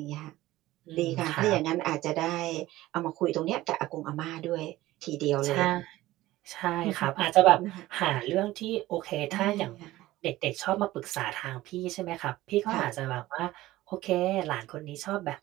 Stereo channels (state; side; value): quieter; left; 16.7 dB